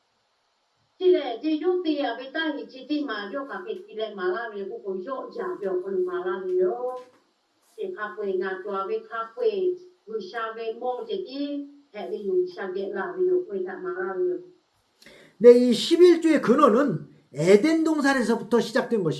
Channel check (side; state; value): both; identical; correlation 1.00